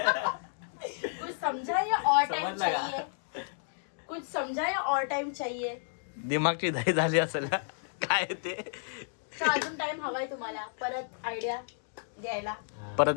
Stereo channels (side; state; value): right; silent; digital silence